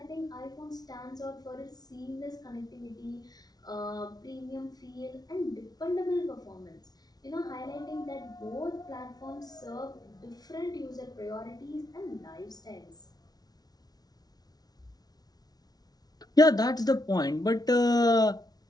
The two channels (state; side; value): late; right; 0.19 ms